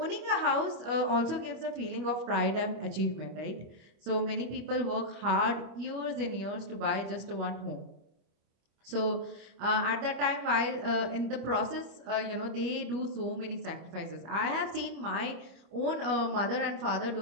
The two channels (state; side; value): late; left; 25 ms